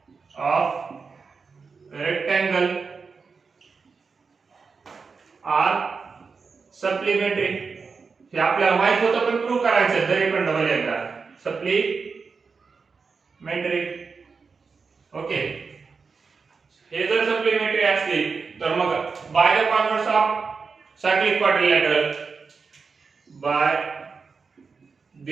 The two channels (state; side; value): quieter; left; 5.0 dB